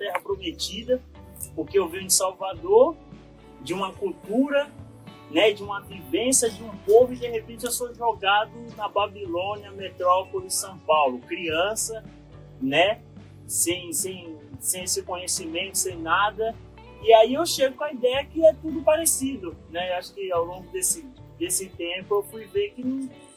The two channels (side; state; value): both; identical; correlation 1.00